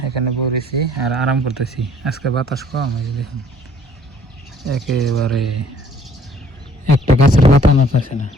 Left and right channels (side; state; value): both; normal; correlation 0.58